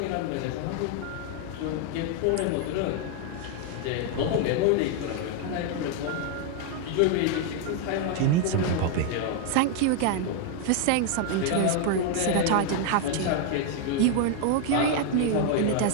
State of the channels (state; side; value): different; both; correlation 0.00